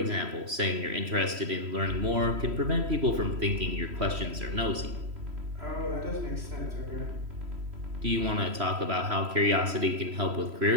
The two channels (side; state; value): left; late; 3.1 ms